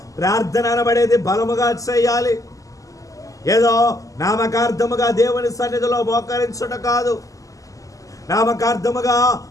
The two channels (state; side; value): late; right; 0.16 ms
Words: ప్రార్థన అనబడేది బలముగా చేయాలి. ఏదో నామకార్థముగా దేవుని సన్నిధిలో మోకరించుట కాదు. నామకార్థముగా